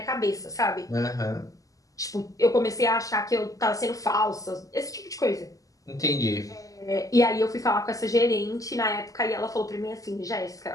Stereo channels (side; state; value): right; late; 0.17 ms